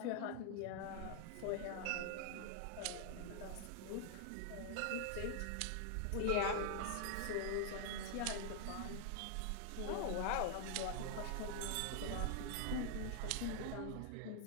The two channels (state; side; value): different; both; correlation 0.00